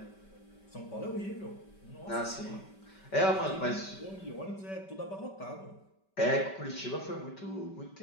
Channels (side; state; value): right; late; 5.2 ms